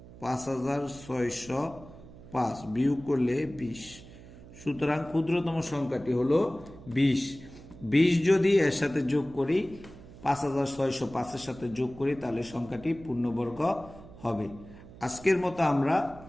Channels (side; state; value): right; noise; hum, 18 dB below the sound